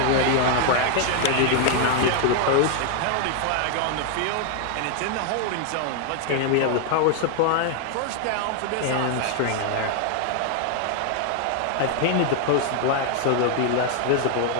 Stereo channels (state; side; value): different; both; correlation 0.00